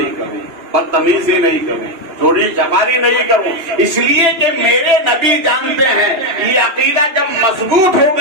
کریں، بدتمیزی نہیں کریں، چوری چپاری نہیں کروں، اس لیے کہ میرے نبی جانتے ہیں. یہ عقیدہ جب مضبوط ہو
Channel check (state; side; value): late; left; 2.9 ms